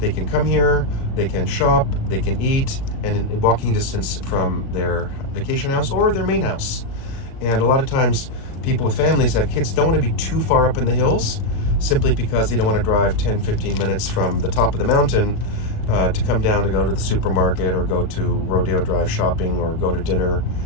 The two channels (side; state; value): right; late; 37 ms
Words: can come here, they can shop, they can eat, and in walking distance from their vacation house or their main house. And a lot of times people with families have kids don't want to be too far up in the hills simply because they don't want to drive 10-15 minutes from the top of the mountain to come down to go to the supermarket or go to Rodeo Drive shopping or go to dinner